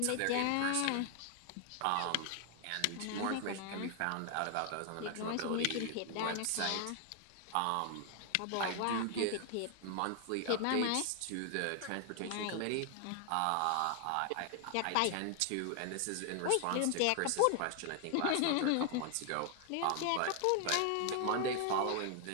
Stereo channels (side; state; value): both; different; correlation 0.00